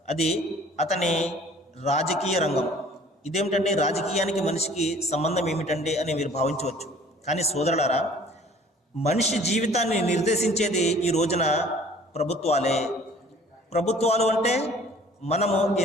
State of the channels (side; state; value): both; normal; correlation 0.52